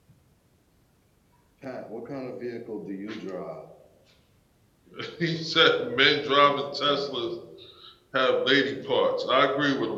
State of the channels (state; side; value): identical; both; correlation 1.00